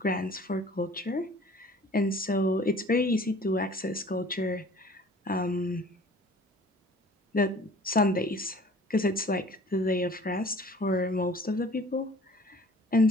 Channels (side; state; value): both; normal; correlation 0.49